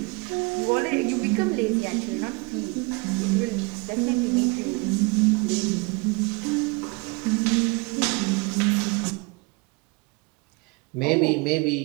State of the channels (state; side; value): quieter; left; 27.8 dB